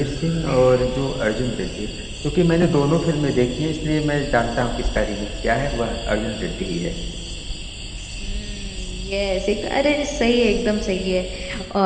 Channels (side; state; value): both; identical; correlation 1.00